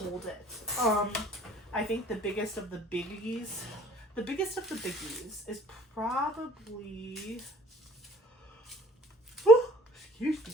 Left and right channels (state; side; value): normal; both; correlation 0.53